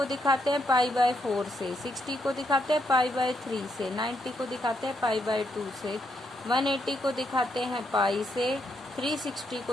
दिखाते हैं π/4 से, 60 को दिखाते हैं π/3 से, 90 को दिखाते हैं π/2 से, 180 को दिखाते हैं पाई से, 360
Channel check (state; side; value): normal; both; correlation 0.78